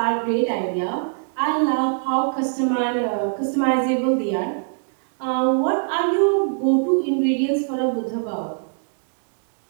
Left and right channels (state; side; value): silent; left; digital silence